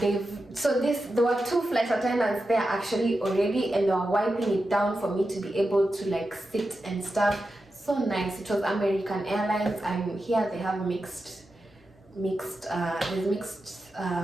were two flight attendants there actually already, and they were wiping it down for me to be able to like sit and stuff. So nice. It was American Airlines. I'm here. They have mixed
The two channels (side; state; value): both; normal; correlation 0.90